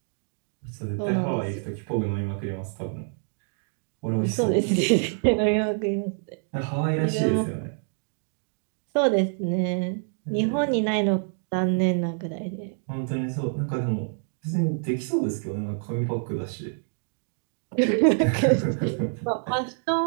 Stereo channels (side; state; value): left; silent; 60 dB below the other